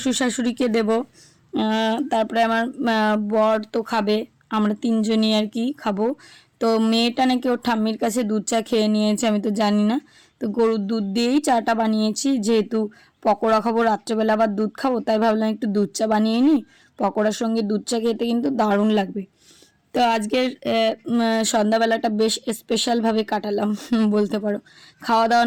শাশুড়িকে দেব, তারপরে আমার বর তো খাবে, আমরা 3 জনই আর কি খাবো। তো মেয়েটা নাকি ওর ঠাম্মির কাছে দুধ চা খেয়ে নিয়েছে, আমি তো জানি না। তো গরুর দুধ দিয়েই চাটা বানিয়েছি, যেহেতু পকোড়া খাবো রাত্রেবেলা আবার দুধ খাবো, তাই ভাবলাম একটু দুধ চা বানিয়ে নিই। পকোড়ার সঙ্গে দুধ চা খেতে কিন্তু দারুণ লাগবে। তো আজকের সন্ধ্যাবেলাটা বেশ স্পেশালভাবে কাটালাম বলতে পারো। খাওয়া দাওয়া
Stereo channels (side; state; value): both; identical; correlation 1.00